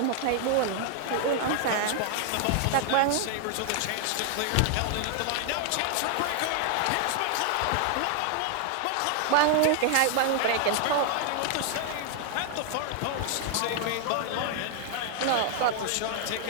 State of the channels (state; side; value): different; both; correlation 0.00